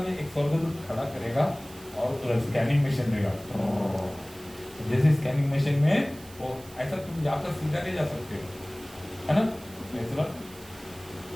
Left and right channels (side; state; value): right; noise; hiss, 20 dB below the sound